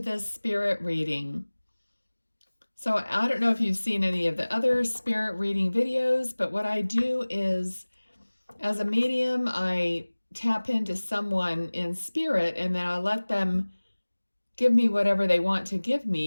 spirit reading. So I don't know if you've seen any of the other spirit reading videos, but what I do is, as a medium, I tap into someone in spirit and then I let them give me whatever they want to give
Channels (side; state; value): both; inverted; correlation -1.00